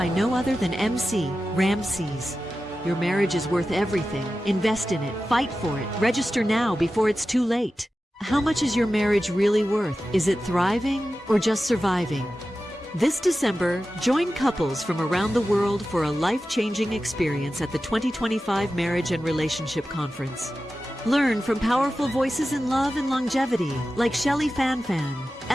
no other than MC Ramses. Your marriage is worth everything. Invest in it. Fight for it. Register now before it's too late. How much is your marriage really worth? Is it thriving or just surviving? This December, join couples from around the world for a life-changing experience at the 2025 Marriage and Relationship Conference. Learn from powerful voices in love and longevity like Shelley Fanfan,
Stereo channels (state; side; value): normal; both; correlation 0.93